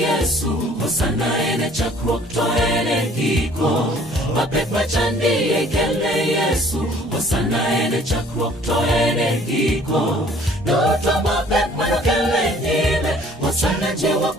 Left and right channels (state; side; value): normal; both; correlation 0.55